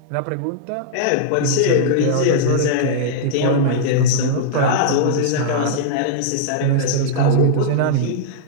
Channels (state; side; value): different; both; correlation -0.02